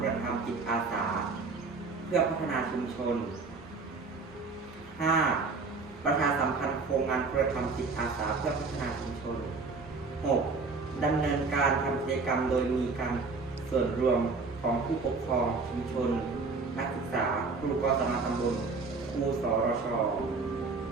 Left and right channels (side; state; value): left; quieter; 4.2 dB